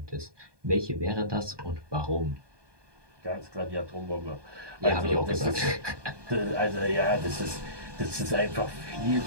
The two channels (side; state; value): left; late; 1.2 ms